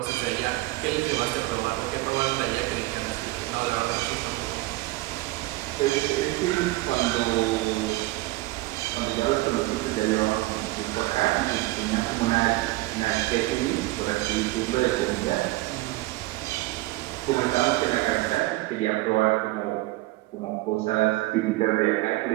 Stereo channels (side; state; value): left; quieter; 19.5 dB